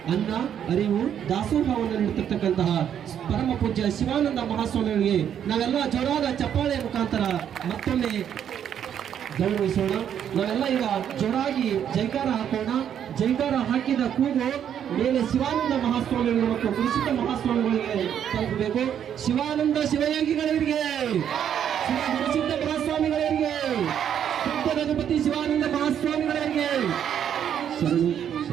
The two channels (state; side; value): quieter; left; 9.2 dB